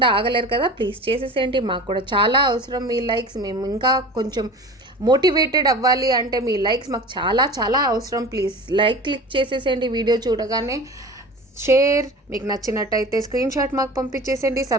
ఆగలేరు కదా, ప్లీజ్ చేసేసేయండి. మాకు కూడా చాలా అవసరం మీ లైక్స్. మేము ఇంకా కొంచెం మోటివేటెడ్ అవ్వాలి అంటే మీ లైక్స్ మాకు చాలా చాలా అవసరం. ప్లీజ్ లైక్ క్లిక్ చేసేసేయండి వీడియో చూడగానే. షేర్, మీకు నచ్చినట్టయితే స్క్రీన్ షాట్ మాకు పంపించేసేయండి.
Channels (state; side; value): normal; both; correlation 0.36